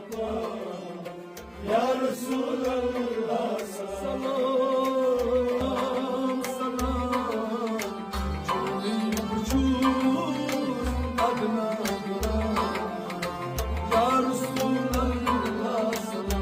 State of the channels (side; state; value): both; identical; correlation 1.00